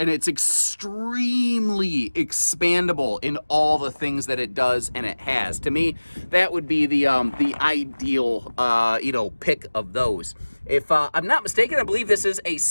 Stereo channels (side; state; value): both; inverted; correlation -1.00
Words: it's extremely expandable in all the things that it does and it has. To me, that would be the ideal pick of those. If I'm not mistaken, I believe this is a